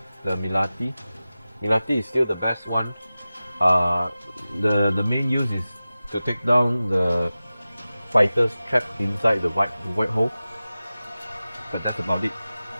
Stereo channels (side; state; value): both; inverted; correlation -0.96